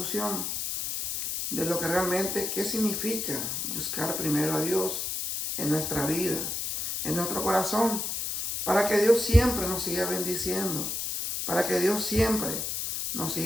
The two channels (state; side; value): noise; left; hiss, 2 dB below the sound